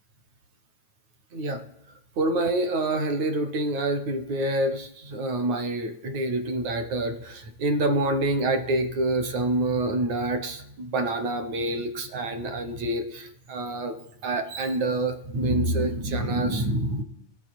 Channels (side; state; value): left; late; 9.2 ms